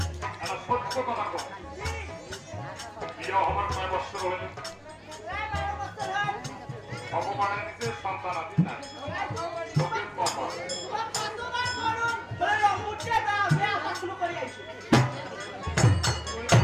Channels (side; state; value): both; identical; correlation 1.00